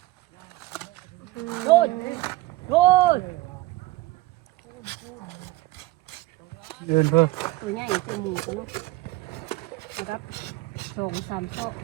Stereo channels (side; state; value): left; quieter; 18.9 dB